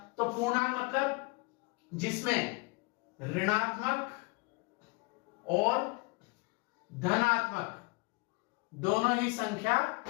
तो पूर्णांक मतलब जिसमें ऋणात्मक और धनात्मक दोनों ही संख्या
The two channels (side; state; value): right; quieter; 27.3 dB